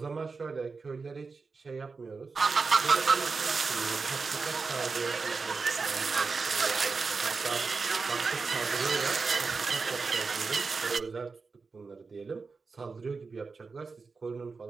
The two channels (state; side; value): quieter; left; 4.5 dB